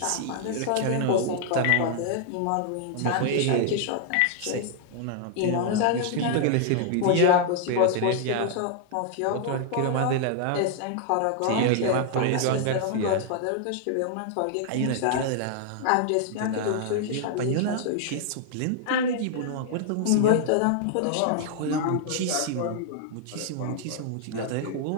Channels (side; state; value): both; different; correlation -0.01